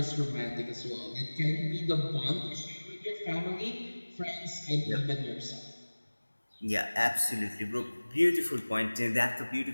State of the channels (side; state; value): both; inverted; correlation -1.00